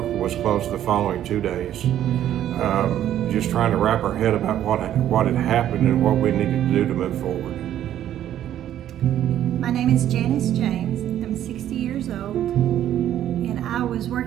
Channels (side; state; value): left; quieter; 11.4 dB